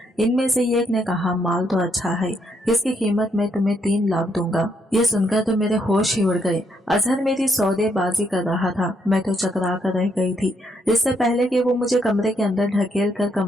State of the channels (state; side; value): normal; both; correlation 0.74